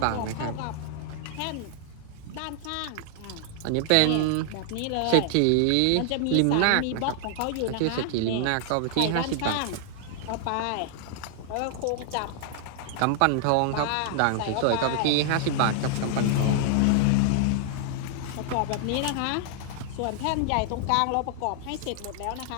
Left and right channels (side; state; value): both; different; correlation 0.00